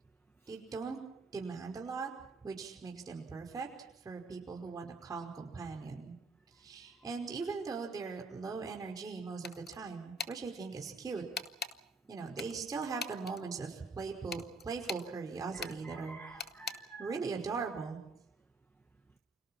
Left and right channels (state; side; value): quieter; left; 3.4 dB